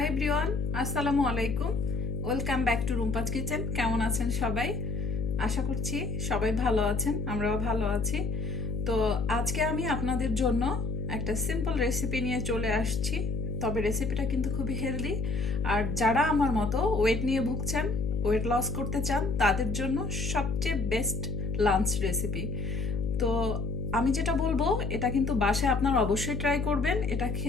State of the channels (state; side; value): noise; left; hum, 2 dB below the sound